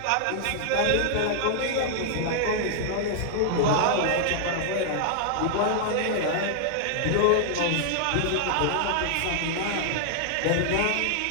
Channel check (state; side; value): different; both; correlation -0.01